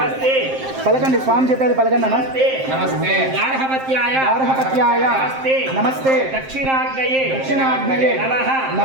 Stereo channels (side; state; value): left; late; 7.6 ms